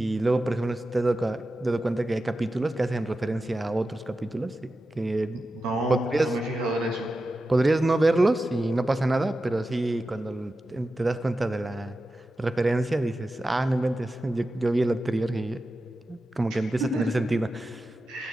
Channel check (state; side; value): normal; both; correlation 0.92